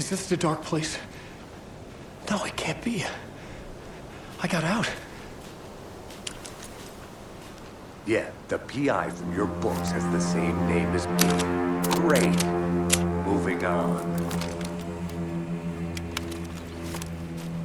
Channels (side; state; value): both; identical; correlation 1.00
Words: this the dark place? No, it can't be. I got out. Yeah, the PI from your books has the same name as me. Great. Moving on.